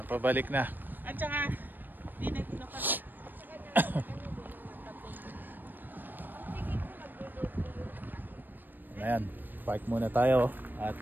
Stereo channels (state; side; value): late; left; 0.091 ms